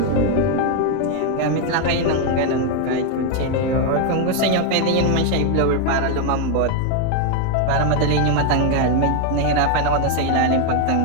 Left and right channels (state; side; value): different; both; correlation 0.01